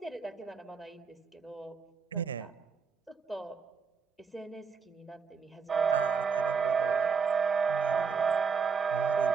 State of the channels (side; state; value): left; quieter; 5.6 dB